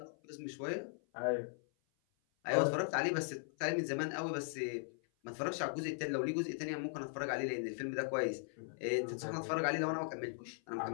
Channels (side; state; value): right; silent; 52 dB below the other